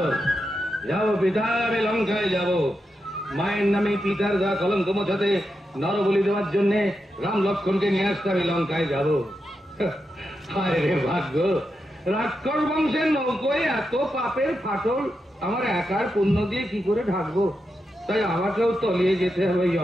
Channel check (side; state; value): both; normal; correlation 0.87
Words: যাবো পিতা, আমি লঙ্কায় যাব। মায়ের নামে পিতার গা কলঙ্ক মোছাতে, নরবলি দেওয়ার জন্য রাম লক্ষ্মণকে নিয়ে আসতে আমি লঙ্কায় যাব। হায় রে ভাগ্য, রাক্ষস বংশের নৌকোয় এত পাপের ফাটল আমার একার পুণ্য দিয়ে কি করে ঢাকবো? তাই আমাকেও তলিয়ে যেতে হবে